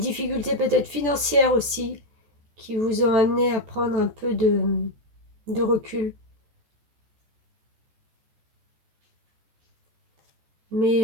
peut-être financières aussi qui vous ont amené à prendre un peu de recul.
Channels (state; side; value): late; left; 14 ms